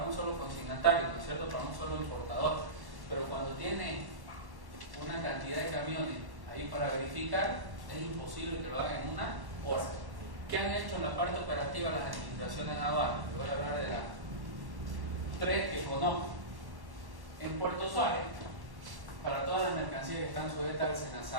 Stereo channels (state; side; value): late; left; 1.1 ms